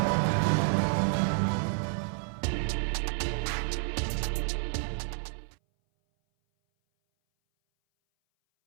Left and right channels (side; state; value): left; silent; 58 dB below the other